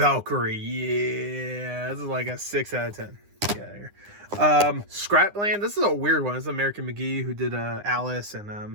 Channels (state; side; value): late; left; 9.8 ms